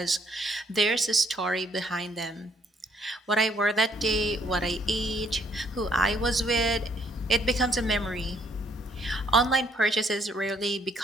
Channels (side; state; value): both; normal; correlation 0.67